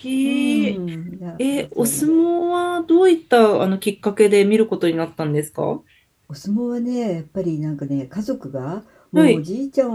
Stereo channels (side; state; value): both; identical; correlation 1.00